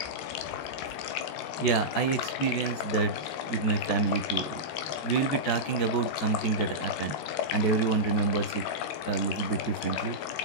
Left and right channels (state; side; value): late; right; 13 ms